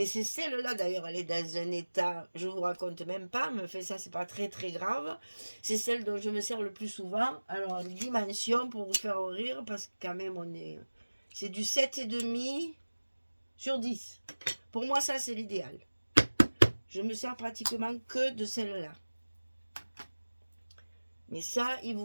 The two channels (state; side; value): inverted; both; correlation -1.00